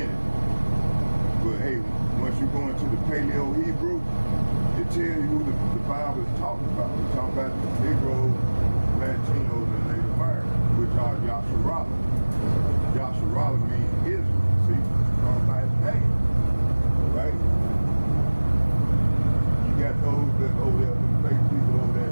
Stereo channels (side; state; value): both; inverted; correlation -1.00